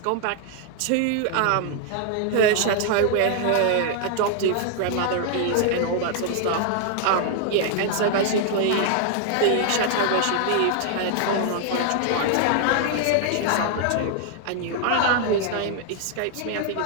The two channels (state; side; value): different; both; correlation 0.00